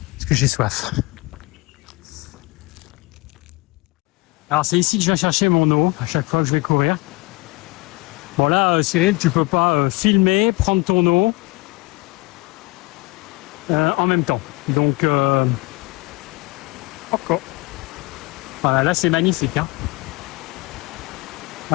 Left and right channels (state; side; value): quieter; right; 24.0 dB